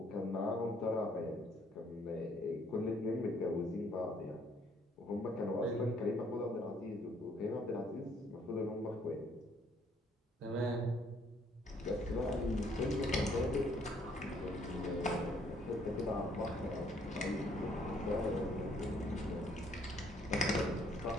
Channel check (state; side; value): normal; both; correlation 0.65